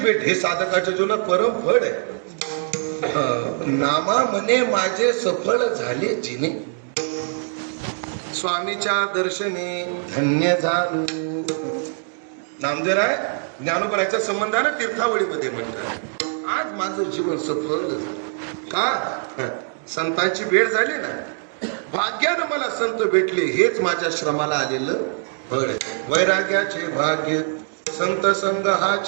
हे साधकाच्या जीवनात परम फळ आहे. नामा म्हणे माझे सफळ झाले जिने स्वामीच्या दर्शने धन्य झालो. नामदेवराय ज्ञानोबराच्या संबंधानं तीर्थावळीमध्ये म्हणतात आज माझं जीवन सफल झालं. का? संतांची भेट झाली ना. भाग्यानं मला संत भेटले हेच माझ्या श्रमाला आलेलं फळ आहे. वैराग्याचे भाग्य संत संग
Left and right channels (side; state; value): left; silent; 62 dB below the other